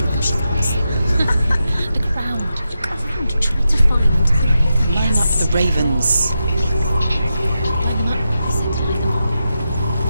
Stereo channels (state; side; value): inverted; both; correlation -0.88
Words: them? She can't see them. The ground. Look around. Try to find the ravens. Line up the ravens. Line them up. I said to line them up.